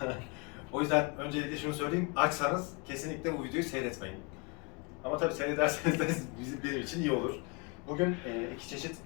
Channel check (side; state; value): right; quieter; 30.6 dB